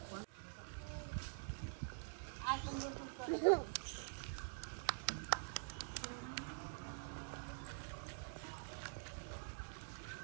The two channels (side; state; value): left; silent; digital silence